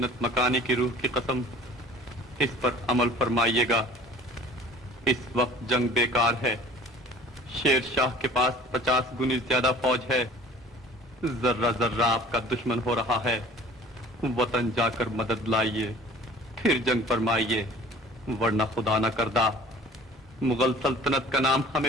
मकानी की रूह की कसम, इस पर अमल फरमाइएगा। इस वक्त जंग बेकार है। शेर शाह के पास 50 गुनी ज्यादा फौज है। जर्रा जर्रा आपका दुश्मन हो रहा है। वतन जाकर मदद लाइए, फिर जंग फरमाइए, वरना खुदा न करदा मुगल सल्तनत का नाम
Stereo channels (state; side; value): normal; both; correlation 0.47